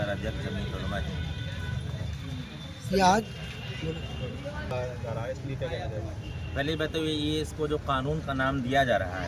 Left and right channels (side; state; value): both; identical; correlation 1.00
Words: अध्यक्ष जमीयत उलमा है। ये आज पहली बात तो ये इसको जो कानून का नाम दिया जा रहा